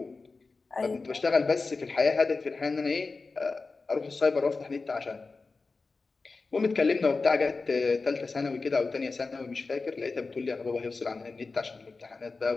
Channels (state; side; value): quieter; right; 4.0 dB